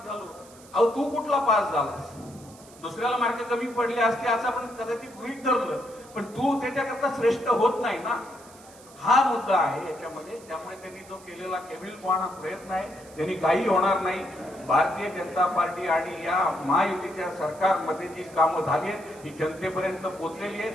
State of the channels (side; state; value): right; noise; hiss, 23 dB below the sound